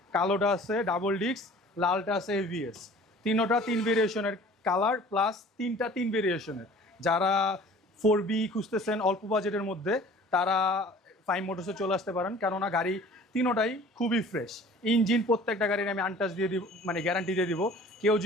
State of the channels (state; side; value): normal; both; correlation 0.47